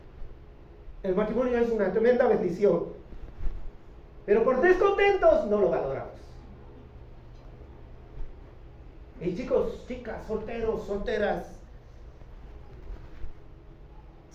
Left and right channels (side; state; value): both; identical; correlation 1.00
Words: El matrimonio es una tremenda bendición, pero por descontentos no lo valoramos. Y chicos, chicas, solteros, solteras,